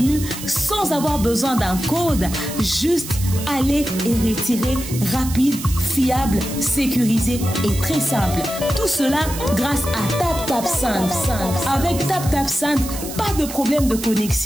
sans avoir besoin d'un code. Juste aller et retirer rapide, fiable, sécurisé et très simple. Tout cela grâce à TapTapSend. Avec TapTapSend, pas de problème de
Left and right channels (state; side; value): noise; right; hiss, 10 dB below the sound